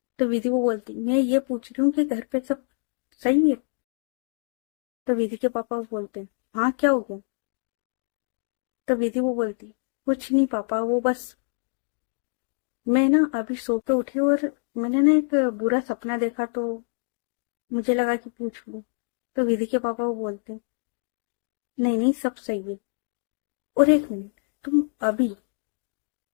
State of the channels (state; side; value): silent; right; 61 dB below the other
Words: तो विधि वो बोलती, मैं ये पूछ रही हूँ कि घर पे सब सही है। तो विधि के पापा वो बोलते हैं, हाँ क्या हो गया। तो विधि वो बोलती, कुछ नहीं पापा, वो बस मैं ना अभी सो के उठी और मैंने ना एक बुरा सपना देखा, तो मुझे लगा कि पूछ लूं। तो विधि के पापा वो बोलते, नहीं नहीं सब सही है। और 1 मिनट, तुम अभी